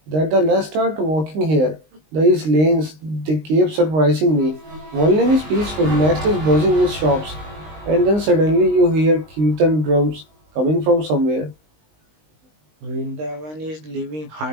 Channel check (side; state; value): left; late; 19 ms